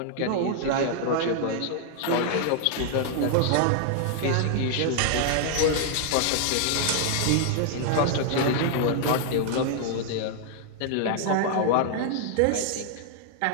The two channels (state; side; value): different; both; correlation -0.01